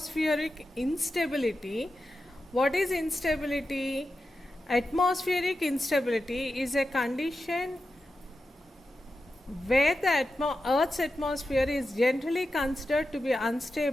instability. What is instability? Atmospheric instability is a condition where the Earth's atmosphere is generally considered to be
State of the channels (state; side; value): normal; both; correlation 0.91